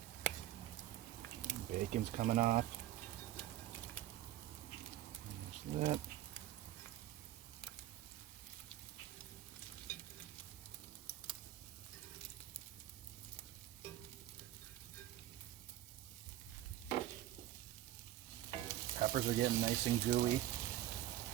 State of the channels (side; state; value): left; quieter; 13.5 dB